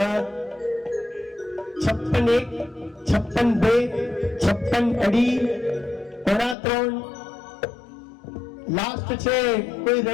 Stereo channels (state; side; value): drops out; right; at 6.6 s